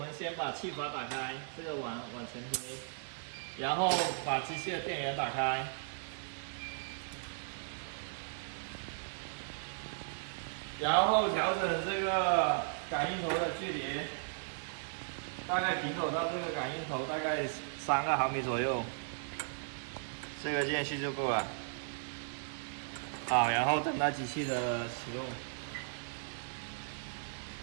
先把气阀打开，这个往前推，然后把机器的电源打开，然后调整这个感应头的距离，大概平走到这个感应头大概3毫米左右，这个间隙就够了。好，然后等待机器的启动，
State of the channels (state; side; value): silent; left; digital silence